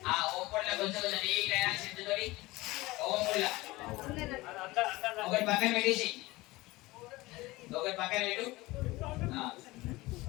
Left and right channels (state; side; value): quieter; right; 20.5 dB